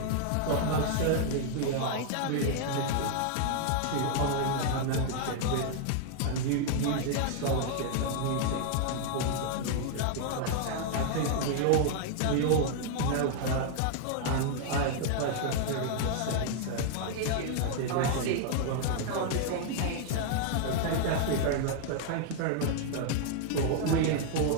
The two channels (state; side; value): different; both; correlation 0.00